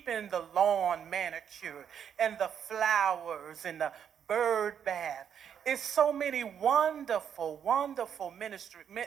the lawn manicured and the flowers and the bird bath. It's so many wonderful, wonderful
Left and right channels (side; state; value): left; quieter; 8.3 dB